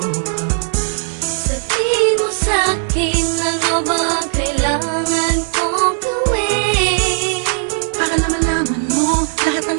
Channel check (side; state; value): left; silent; digital silence